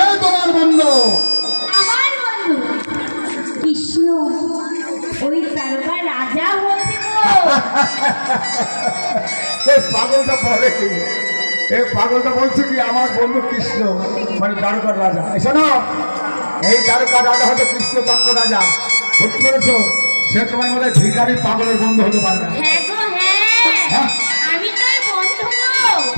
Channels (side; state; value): both; inverted; correlation -1.00